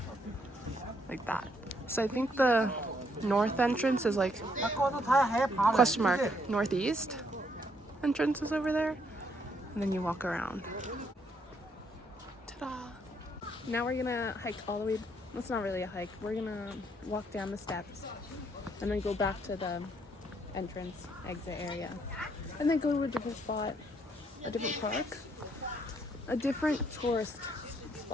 like that. So I think the north entrance is like question mark northeast entrance is over there, and then you walk around. Ta-da! Now we're gonna hike all the way. It's not really a hike. We're gonna walk down the steps and then go back to the entrance exit area, and then go to a different spot, a different park, a different tourist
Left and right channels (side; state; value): both; normal; correlation 0.71